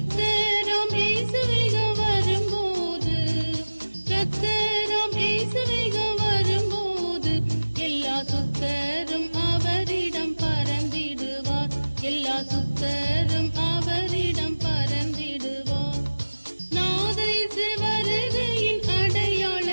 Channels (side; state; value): both; inverted; correlation -1.00